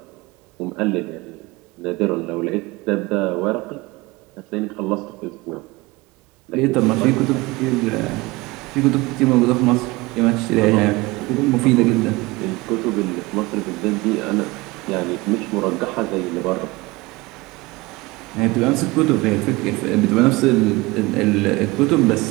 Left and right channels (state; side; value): quieter; left; 22.2 dB